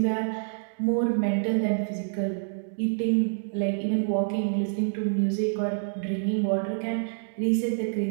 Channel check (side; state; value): left; silent; digital silence